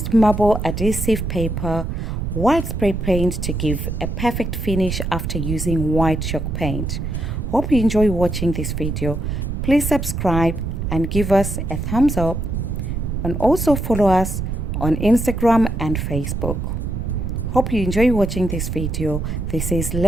marble adhesive paper, white spray paint to give a perfect finish after using white chalk paint. Hope you enjoy watching this video. Please subscribe and give us a thumbs up, and also follow us on Instagram and Facebook. Hope you enjoy watching this video. This is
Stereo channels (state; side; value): noise; right; rumble, 3 dB below the sound